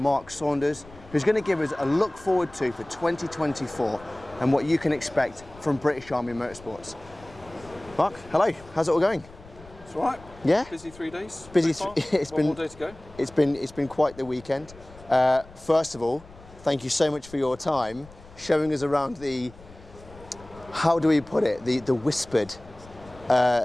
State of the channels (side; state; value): left; noise; rumble, 21 dB below the sound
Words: Saunders, who's going to give us a look forward to for 2024 and what you can expect from British Army Motorsports. Mark, hello, how's it all going? It's all right. Yeah? Busy 3 days. Busy. It's been 1 more day to go. It's been quite the weekend. First of all, thank you so much for your time showing us around the, how do we put it, the whispered